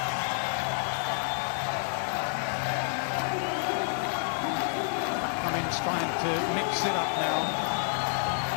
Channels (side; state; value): right; silent; digital silence